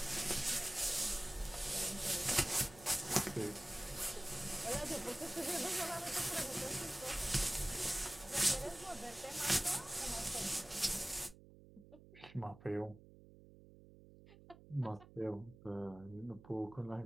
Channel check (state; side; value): noise; right; hum, 20 dB below the sound